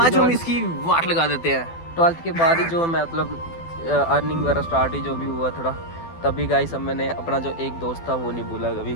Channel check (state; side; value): late; right; 12 ms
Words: जो हम इसकी वाट लगा देते हैं। 12th के बाद ही जो मैं मतलब अर्निंग वगैरह स्टार्ट ही जो भी हुआ थोड़ा, तभी गाइस अब मैंने अपना जो एक दोस्त था वो नहीं भूला कभी,